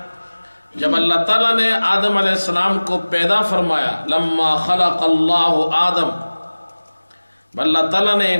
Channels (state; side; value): inverted; both; correlation -1.00